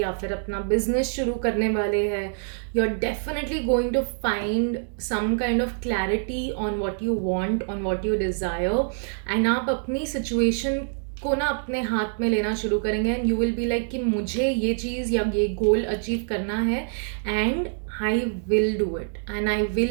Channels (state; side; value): silent; left; digital silence